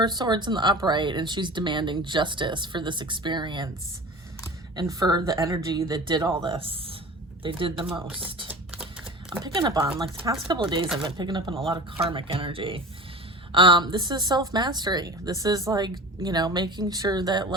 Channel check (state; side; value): normal; both; correlation 0.35